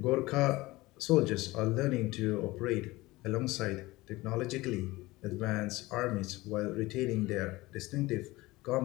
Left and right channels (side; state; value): right; quieter; 20.0 dB